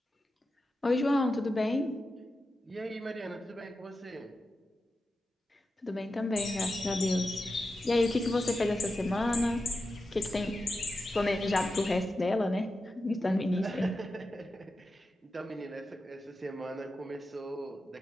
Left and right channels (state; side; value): normal; both; correlation 0.91